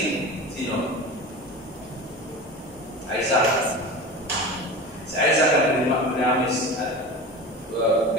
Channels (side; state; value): both; normal; correlation 0.31